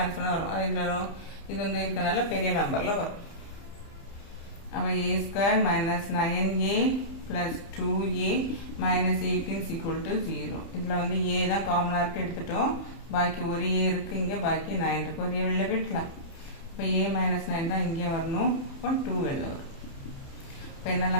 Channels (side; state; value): right; late; 30 ms